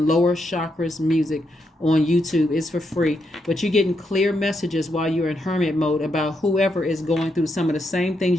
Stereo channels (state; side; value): normal; both; correlation 0.81